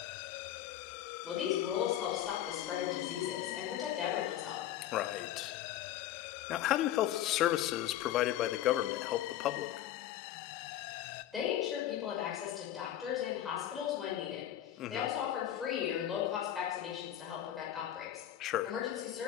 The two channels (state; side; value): quieter; right; 12.0 dB